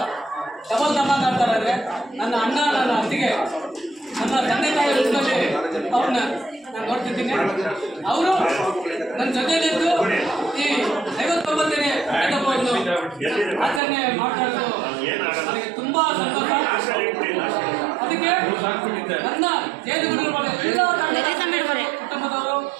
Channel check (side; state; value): left; drops out; at 13.8 s